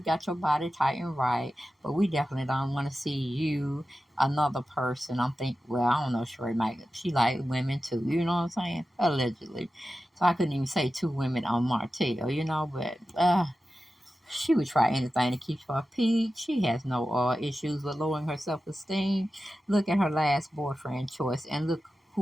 your body tight and right, but we definitely don't want to see you, another person. I'm thinking, well, I don't know, Sheree might, she like women too, you know what I'm saying? Allegedly. So I couldn't even say two women on Martell, you know, but she would try anything to keep her peak. She has no issues with lowering her self-esteem. Look at her last boyfriend choice, and look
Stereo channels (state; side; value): normal; both; correlation 0.93